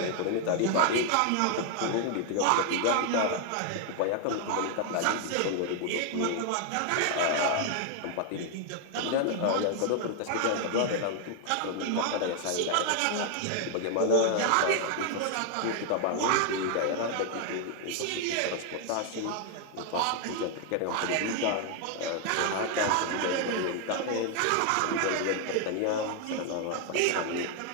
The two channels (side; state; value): both; different; correlation 0.00